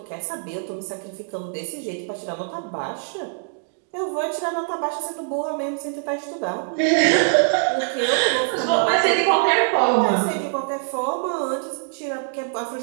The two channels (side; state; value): left; silent; digital silence